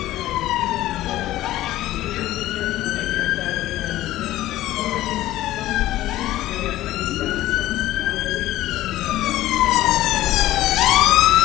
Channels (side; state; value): right; quieter; 15.1 dB